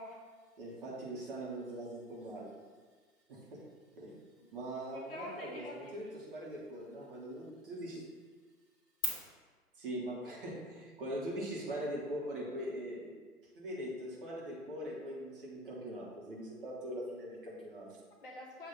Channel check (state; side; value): normal; both; correlation 0.38